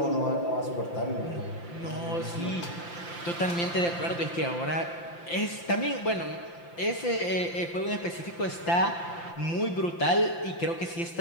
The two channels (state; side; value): late; right; 5.8 ms